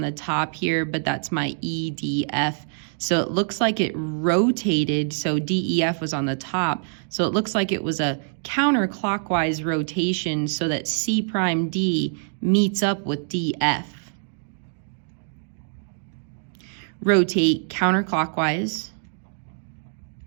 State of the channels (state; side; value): silent; left; digital silence